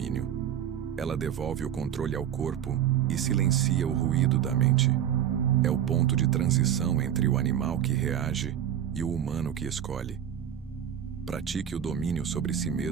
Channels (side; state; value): left; quieter; 10.0 dB